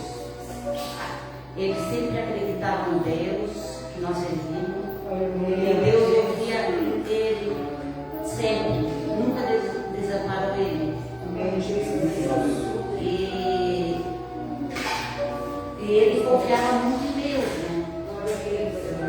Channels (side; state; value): both; identical; correlation 1.00